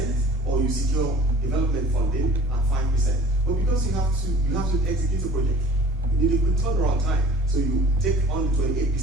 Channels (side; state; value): both; normal; correlation 0.47